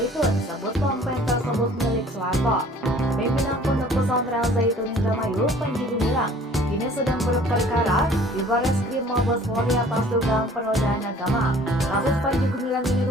sebut ponpes tersebut milik Soeharto. Pimpinan Pondok Pesantren Al Zaitun Indramayu, Panji Gumilang, kini sedang berperkara di Barreskrim Mabes Polri atas dugaan penodaan agama. Kasus Panji Gumilang ini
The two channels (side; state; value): both; normal; correlation 0.51